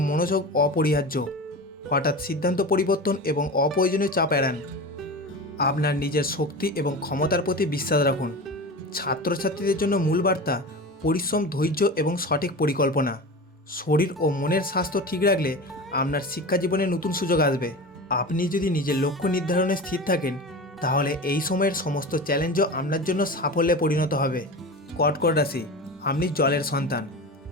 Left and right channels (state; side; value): normal; both; correlation 0.29